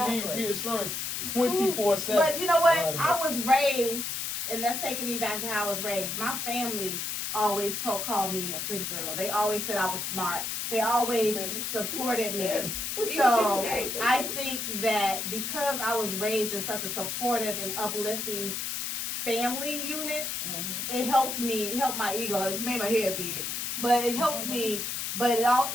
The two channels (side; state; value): left; noise; hiss, 3 dB below the sound